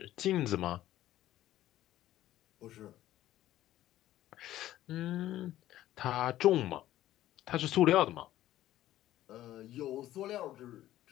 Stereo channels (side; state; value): right; quieter; 13.9 dB